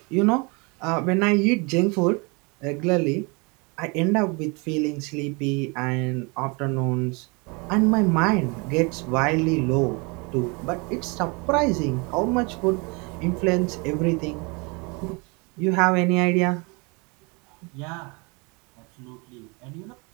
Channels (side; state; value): left; quieter; 29.9 dB